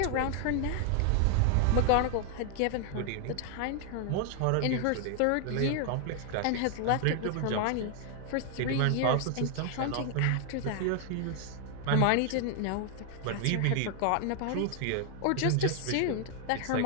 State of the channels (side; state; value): both; different; correlation 0.00